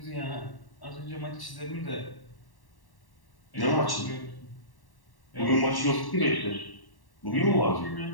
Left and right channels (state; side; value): late; right; 1.1 ms